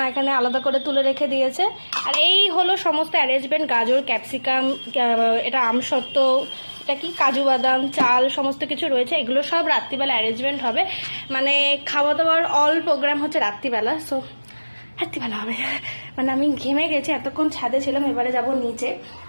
এখানে আলাদা করে তুলে রেখে দিয়েছে। আর এই হলো সমস্ত অ্যারেঞ্জমেন্ট, গাজর, ক্যাপসিকাম, এটা আমসত্ত্ব, এটা কি কাজু বাদাম, চাল, সমস্ত কিছু রয়েছে। এগুলো সব রাত্রিবেলা অ্যারেঞ্জমেন্ট হবে, মানে খাওয়া দাওয়ার অল প্রোগ্রাম হচ্ছে রাত্রিবেলা। সো রাত্রিবেলা হবে, মানে আমি ঘেমে গেছি, এতক্ষণ ছাদে ছিলাম, এবারে যাব নিচে,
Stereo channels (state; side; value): inverted; both; correlation -1.00